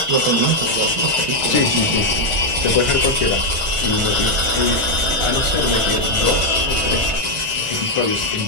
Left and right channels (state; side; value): late; left; 1.4 ms